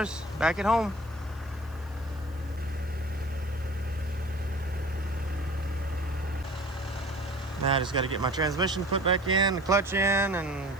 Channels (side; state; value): left; noise; hiss, 27 dB below the sound